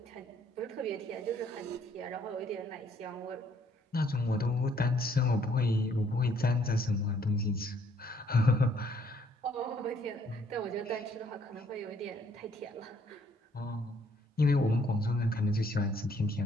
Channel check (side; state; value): both; normal; correlation 0.65